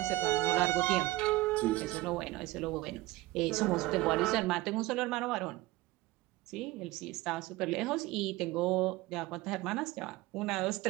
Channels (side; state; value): left; quieter; 18.3 dB